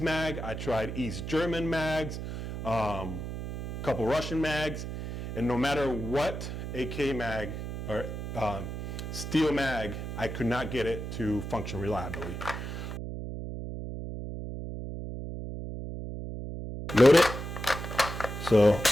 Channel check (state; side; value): noise; right; hum, 6 dB below the sound